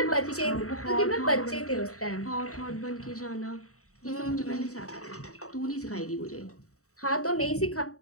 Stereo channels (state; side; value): late; right; 0.65 ms